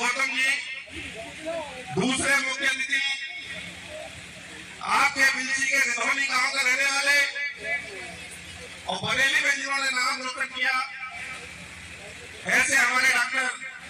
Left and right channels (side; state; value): both; identical; correlation 1.00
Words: जी, दूसरे मुख्य अतिथि आपके बिलसी के रिधौनी गांव के रहने वाले और बरेली में जिन्होंने नाम रोशन किया, ऐसे हमारे डॉक्टर